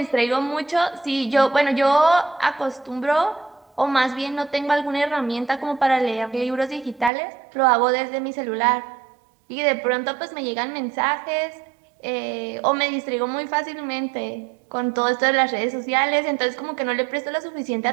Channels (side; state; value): left; drops out; at 7.1 s